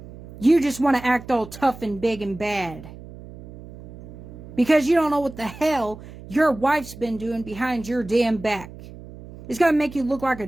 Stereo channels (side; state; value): right; noise; hum, 16 dB below the sound